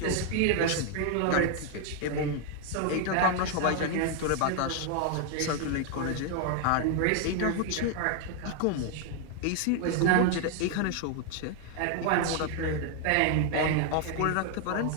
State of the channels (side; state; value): both; different; correlation 0.01